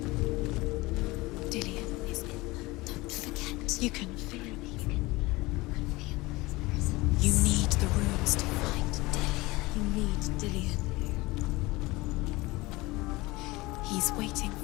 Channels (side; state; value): right; quieter; 21.5 dB